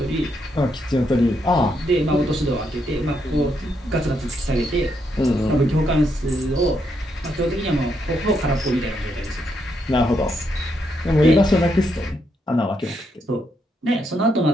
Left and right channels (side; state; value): both; normal; correlation 0.78